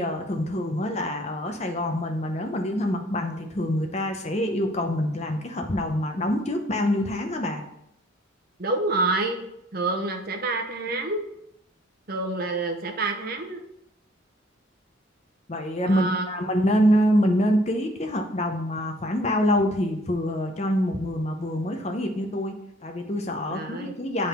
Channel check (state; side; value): normal; both; correlation 0.57